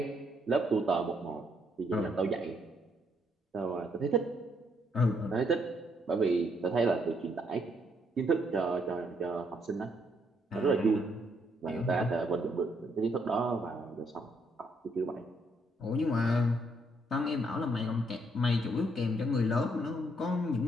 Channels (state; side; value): normal; both; correlation 0.72